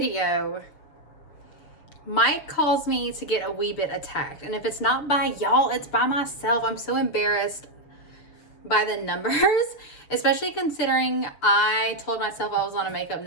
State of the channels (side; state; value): right; late; 6.8 ms